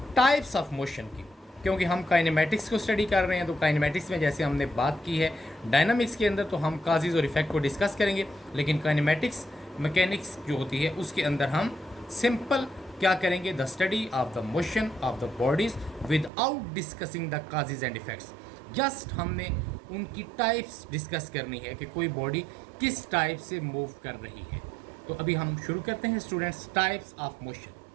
टाइप्स ऑफ मोशन की, क्योंकि हम काइनेमेटिक्स को स्टडी कर रहे हैं। तो काइनेमेटिक्स में जैसे हमने बात की है डायनामिक्स के अंदर तो हम काजेज़ और इफेक्ट को डिस्कस करेंगे, लेकिन काइनेमेटिक्स मैकेनिक्स जो होती है उसके अंदर हम सिंपल क्या करेंगे, the study of the motion of the bodies without discussing the causes and effects. Just हमने उनकी टाइप्स डिस्कस करनी है कि कोई बॉडी किस टाइप से मूव कर रही है। तो अभी हम शुरू करते हैं students types of motion.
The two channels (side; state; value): left; drops out; at 16.3 s